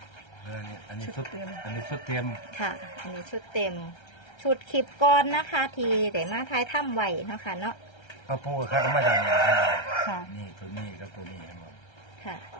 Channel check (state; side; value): late; right; 1.3 ms